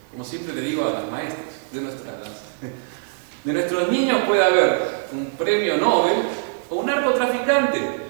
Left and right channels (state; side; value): silent; left; digital silence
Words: Como siempre le digo a las maestras de nuestros niños puede haber un premio Nobel o un narcotraficante.